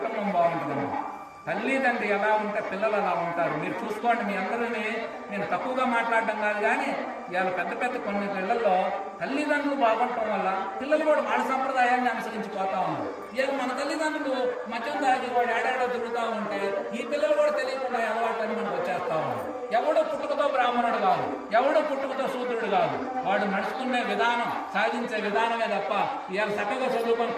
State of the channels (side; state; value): both; identical; correlation 1.00